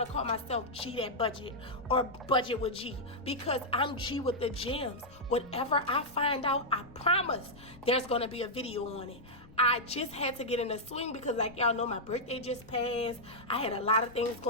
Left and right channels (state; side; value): noise; left; rumble, 21 dB below the sound